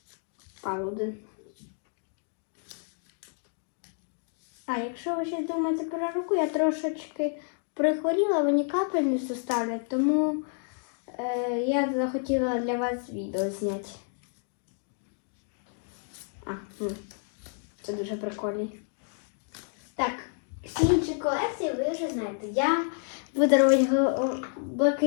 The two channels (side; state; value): right; silent; 58 dB below the other